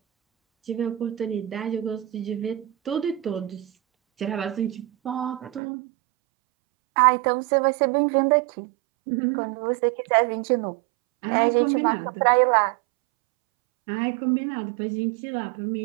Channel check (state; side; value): drops out; left; at 5.6 s